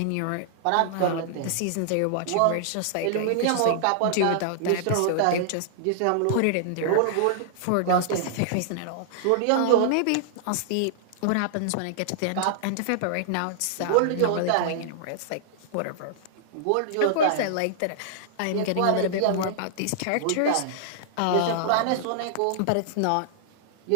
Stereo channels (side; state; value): both; different; correlation -0.01